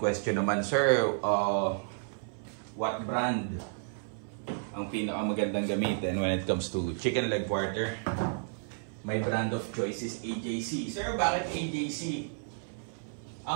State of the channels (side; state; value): left; silent; 57 dB below the other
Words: naman, sir, what brand ang pinakamagandang gamitin when it comes to chicken leg quarter? My brand of choice is AJC. Sir, bakit AJC?